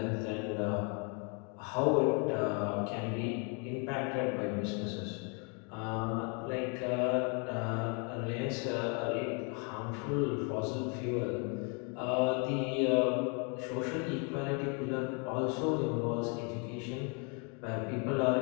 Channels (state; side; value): quieter; right; 36.0 dB